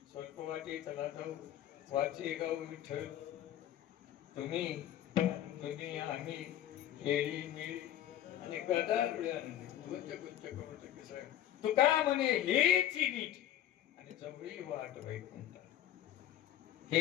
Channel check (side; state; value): right; quieter; 11.9 dB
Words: स्वल्प वाटे चला जाऊ वाचे गाव विठ्ठल तुम्ही आम्ही खेळी मिळी आणि गदार गुंच गुंच करू तुका म्हणे हेच नीट आणि जवळी वाट वैकुंठ.